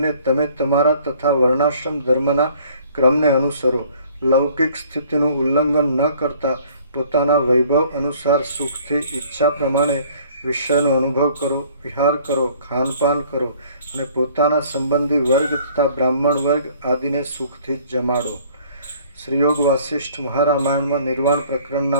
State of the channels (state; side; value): inverted; both; correlation -0.56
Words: તમે તમારા તથા વર્ણાશ્રમ ધર્મના ક્રમને અનુસરો. લૌકિક સ્થિતિનું ઉલ્લંઘન ન કરતા પોતાના વૈભવ અનુસાર સુખથી ઈચ્છા પ્રમાણે વિષયનો અનુભવ કરો, વિહાર કરો, ખાનપાન કરો અને પોતાના સંબંધી વર્ગ તથા બ્રાહ્મણ વર્ગ આદિને સુખથી જ જમાડો. શ્રીયોગ વાસિષ્ઠ મહારામાયણમાં નિર્વાણ